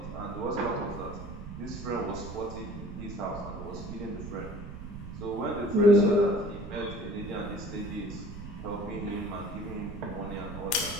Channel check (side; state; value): right; noise; rumble, 11 dB below the sound